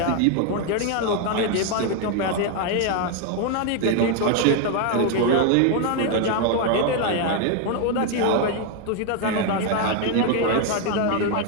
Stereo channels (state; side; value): different; both; correlation 0.01